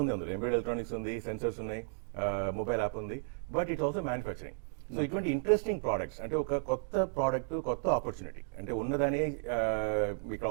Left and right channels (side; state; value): left; silent; digital silence